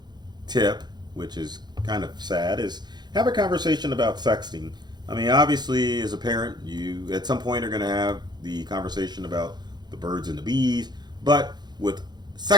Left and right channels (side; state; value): left; late; 0.21 ms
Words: tip, which is kind of sad, is have a conversation about sexting. I mean, obviously, as a parent, you at some point are going to have the conversation about the birds and the bees, but with